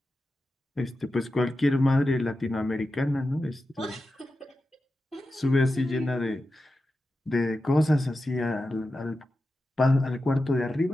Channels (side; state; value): both; normal; correlation 0.91